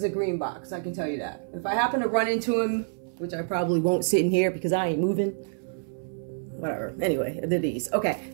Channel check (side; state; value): left; silent; 60 dB below the other